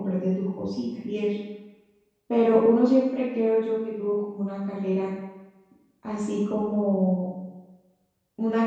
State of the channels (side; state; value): both; identical; correlation 1.00